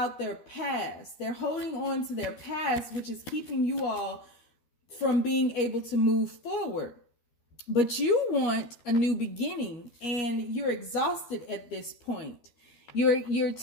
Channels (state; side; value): late; right; 12 ms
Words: their past. They're holding on to their past, which is keeping you all from being able to move forward. But you want a new beginning, and you're exhausted at this point. You're